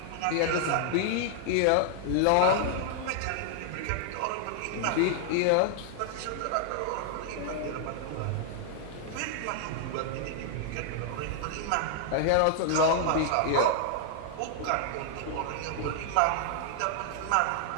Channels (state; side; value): different; both; correlation 0.00